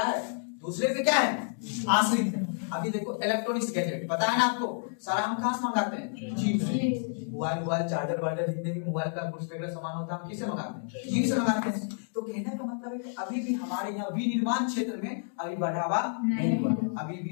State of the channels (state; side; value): silent; right; digital silence